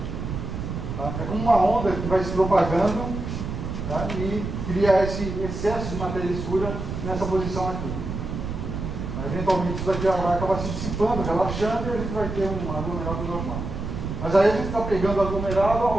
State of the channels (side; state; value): right; noise; rumble, 5 dB below the sound